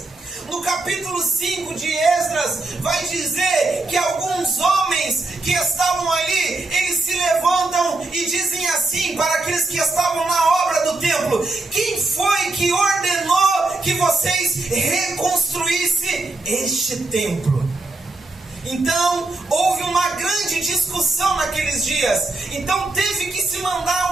No capítulo 5 de Esdras, vai dizer que alguns homens que estavam ali, eles se levantam e dizem assim para aqueles que estavam na obra do templo: quem foi que ordenou que vocês reconstruíssem este templo? Então, houve uma grande discussão naqueles dias. Então, teve que se mandar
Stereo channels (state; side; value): quieter; left; 3.2 dB